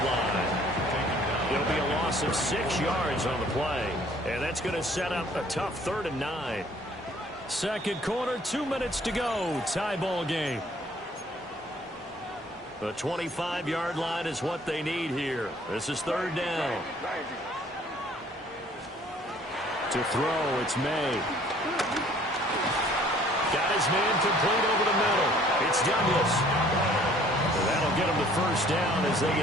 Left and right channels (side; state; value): both; normal; correlation 0.57